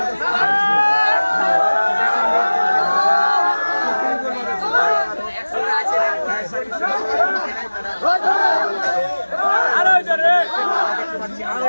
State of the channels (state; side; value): inverted; both; correlation -1.00